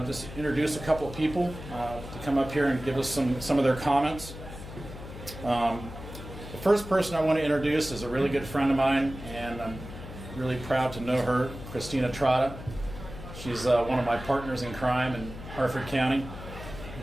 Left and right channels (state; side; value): noise; left; hum, 12 dB below the sound